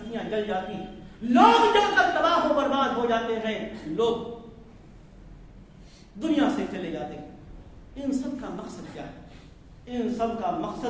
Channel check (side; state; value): both; identical; correlation 1.00